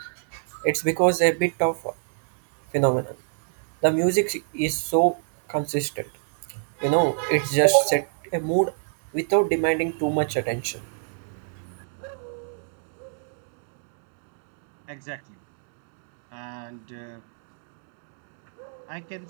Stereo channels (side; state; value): left; silent; digital silence